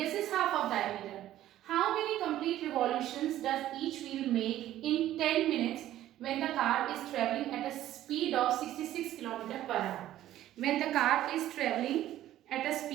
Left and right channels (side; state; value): left; quieter; 13.3 dB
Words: is half of diameter. How many complete revolutions does each wheel make in 10 minutes when the car is traveling at a speed of 66 km per hour? When the car is traveling at a